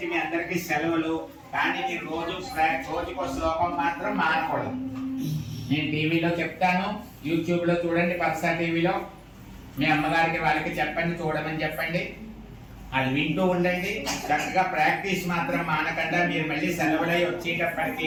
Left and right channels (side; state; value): both; identical; correlation 1.00